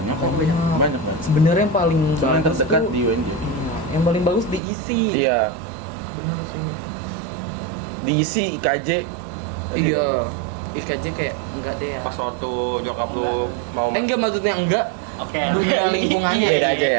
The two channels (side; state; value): left; drops out; at 4.6 s